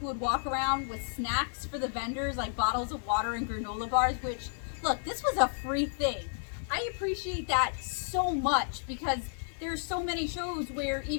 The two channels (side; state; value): right; silent; digital silence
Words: would walk around with snacks for the vendors, like bottles of water and granola bars, which, look, this was a free thing. I appreciate that so much because there's so many shows where